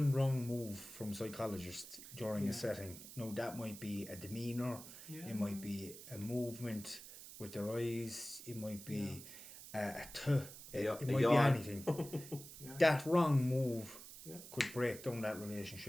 wrong move from psychologists during a setting, that might be a demeanour, it might be a movement with their eyes, it might be it might be anything. That wrong move could break down that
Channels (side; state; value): right; noise; hiss, 14 dB below the sound